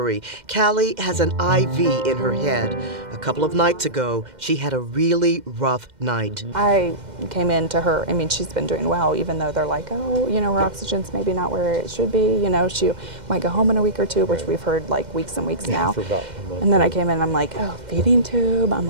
Callie has an IV in her head. A couple of nights ago, she had a really rough night. I came in to her. I mean, she's been doing well, even though they're like, oh, you know, her oxygen's maybe not where it should be. You know, she might go home in a week or two, which we've heard like weeks and weeks now. For about a month. And then I came in and I'm like, oh, feeding tube. I'm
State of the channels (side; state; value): left; late; 2.1 ms